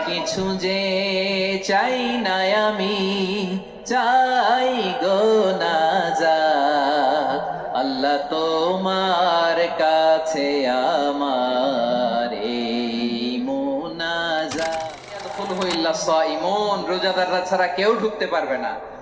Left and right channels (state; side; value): identical; both; correlation 1.00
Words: কিছু যে চাই না আমি, চাই গো নাজাত আল্লাহ তোমার কাছে আমার এই মুনাজাত। ইয়াদখুলহু ইল্লা সাইমুন, রোজাদাররা ছাড়া কেউ ঢুকতে পারবে না।